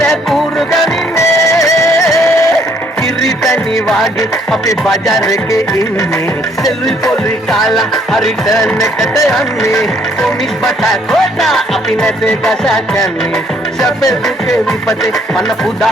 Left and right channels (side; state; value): both; normal; correlation 0.65